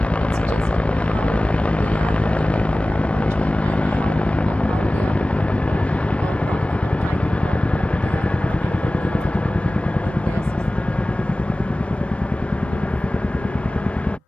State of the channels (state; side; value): normal; both; correlation 0.97